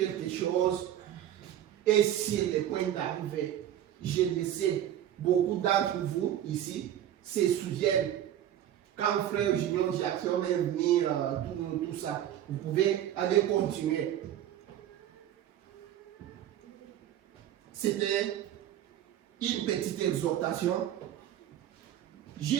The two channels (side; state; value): left; quieter; 11.5 dB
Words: chose. Et si le point d'arrivée, je le sais, beaucoup d'entre vous ici se souviennent quand frère Julien Jackson est venu, tout ça. Vous pouvez aller continuer. C'était une petite exhortation,